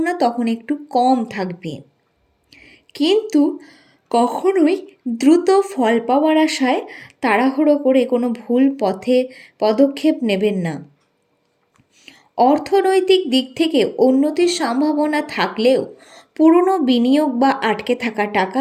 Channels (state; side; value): identical; both; correlation 1.00